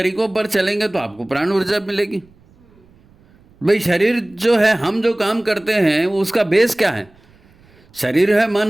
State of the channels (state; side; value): noise; right; rumble, 30 dB below the sound